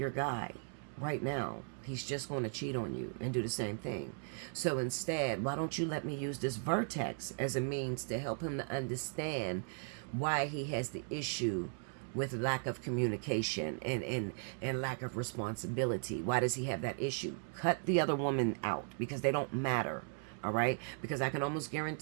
guy right now, he's just going to cheat on you and do the same thing. So instead, why don't you let me use this vertex as a means to help him to understand why he has the issue with lack of communication and lack of responsibility. Why does he have that issue? Cut the other woman out, because they don't matter. All right? Because I can almost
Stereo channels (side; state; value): left; silent; 53 dB below the other